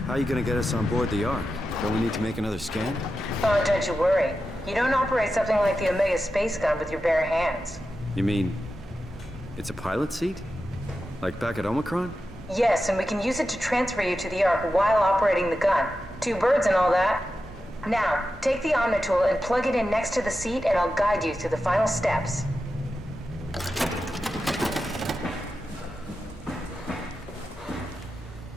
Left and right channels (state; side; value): normal; both; correlation 0.91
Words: How are you gonna get us on board the Ark? Don't we need to make another scan? Oh, don't you worry. You don't operate something like the Omega space gun with your bare hands. You mean... it's a pilot seat? Like back at Omicron? Yes, and we can use it to transfer you to the Ark while operating the gun. 2 birds and all that. Now, take the Omnitool and plug it in next to the seat and I'll guide you through the final steps.